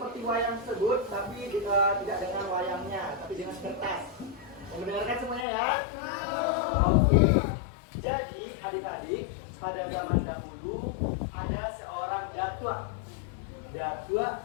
wayang tersebut, tapi tidak dengan wayangnya, tapi dengan kertas. Mendengarkan semuanya ya? Oke. Jadi adik-adik, pada zaman dahulu ada seorang datua. Datua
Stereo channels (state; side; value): drops out; right; at 5.5 s